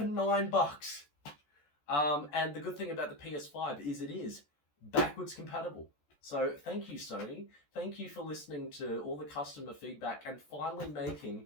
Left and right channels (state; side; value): late; right; 14 ms